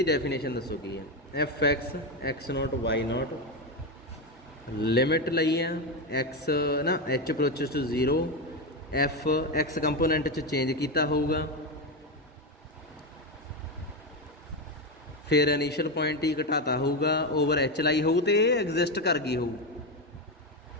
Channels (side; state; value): both; normal; correlation 0.12